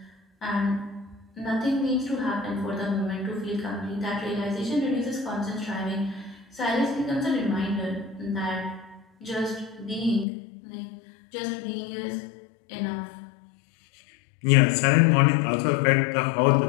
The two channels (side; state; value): right; drops out; at 10.2 s